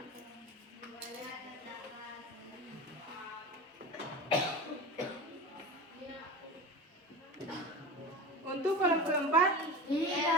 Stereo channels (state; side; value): normal; both; correlation 0.29